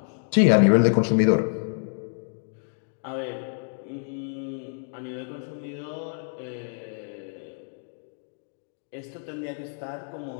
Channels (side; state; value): right; silent; 60 dB below the other